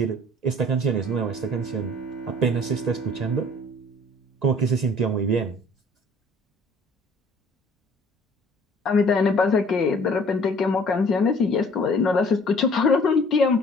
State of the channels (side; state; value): both; normal; correlation 0.53